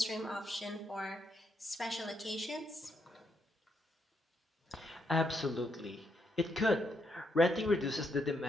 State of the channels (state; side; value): normal; both; correlation 0.77